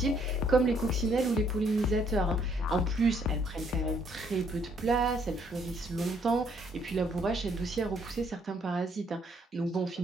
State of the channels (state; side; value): normal; both; correlation 0.68